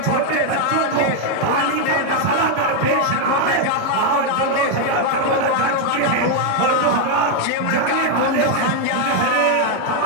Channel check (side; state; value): both; different; correlation 0.01